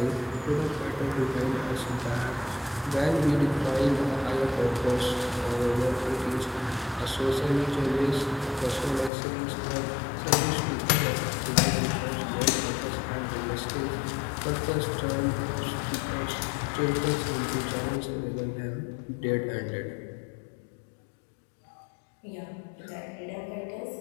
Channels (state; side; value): drops out; right; at 9.1 s